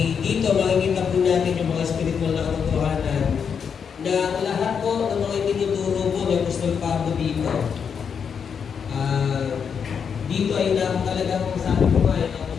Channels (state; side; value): quieter; right; 6.8 dB